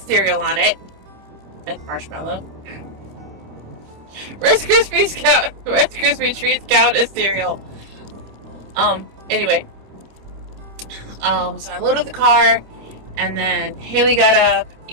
cereal on it and marshmallow. Rice Krispie treats count as cereal. Anyway. So I loaded the car, and then Haley got up,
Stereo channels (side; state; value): left; late; 26 ms